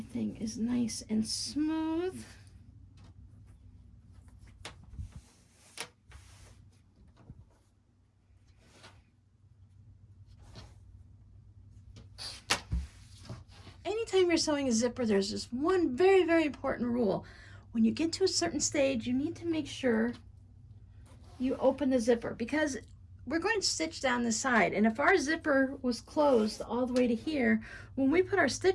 is nice and smooth. Anytime you're sewing a zipper, there's just one very, very important rule. When you get to a certain stage, you need to make sure you open the zipper, because we're going to stitch down the side. And if our zipper was closed all the way to here, when we put our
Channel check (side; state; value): both; identical; correlation 1.00